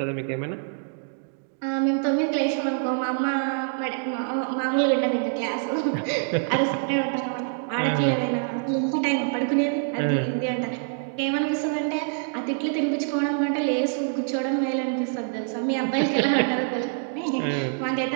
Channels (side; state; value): left; silent; 61 dB below the other